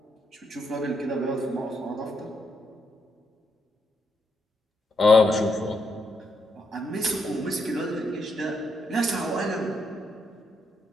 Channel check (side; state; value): both; normal; correlation 0.78